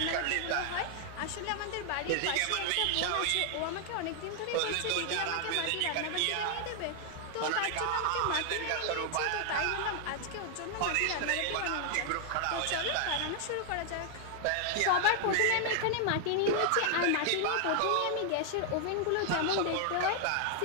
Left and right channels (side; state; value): both; different; correlation 0.00